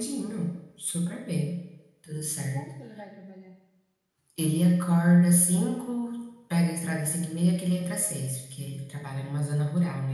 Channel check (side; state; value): both; identical; correlation 1.00